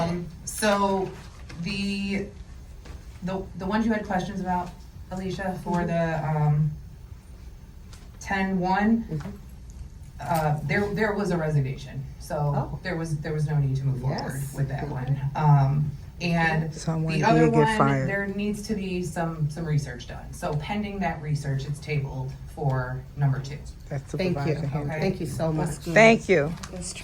in. So the ones you had questions about, Alicia, for the 10-1, there was a resignation, so there was no need to move forward with that one. And Someone the other did get one, fired. there needs to be some research done. So pending that research, it's tabled for number 2. That's Thank you. Supervisor Henry. Thank you so much. Thank you.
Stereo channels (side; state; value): both; identical; correlation 1.00